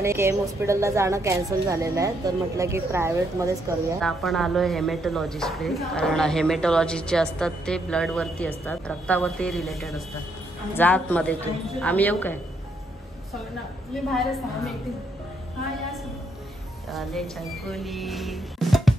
केम हॉस्पिटलला जाणं कॅन्सल झालेलं आहे, तर म्हटलं की प्रायव्हेटमध्येच करूया। आपण आलोय हेमॅटॉलॉजिस्टकडे, कारण हेमॅटॉलॉजिस्ट जे असतात ते ब्लड वरती असतात, रक्तावरती रिलेटेड असतात। जात मध्ये तू आम्ही येऊ काय?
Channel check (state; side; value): normal; both; correlation 0.75